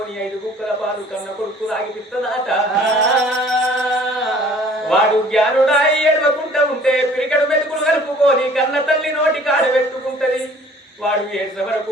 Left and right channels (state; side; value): normal; both; correlation 0.53